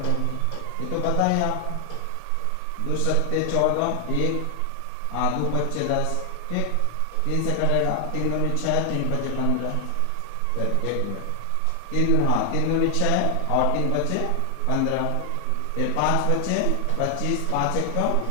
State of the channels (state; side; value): different; both; correlation 0.00